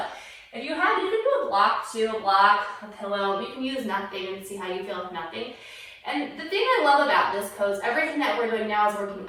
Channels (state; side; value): identical; both; correlation 1.00